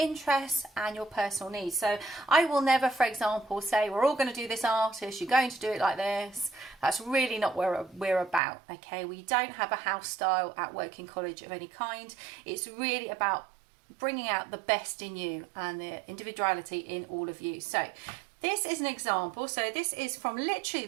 and your personal needs. So I will never, for example, say we're all going to do this artist, you're going to do it like this. That's really not what we're about, okay? We don't have a house style at Woking College of any kind. It's really about bringing out the best in you and the individuality in all of you. So this is an example. So this is from literally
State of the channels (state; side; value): drops out; left; at 8.4 s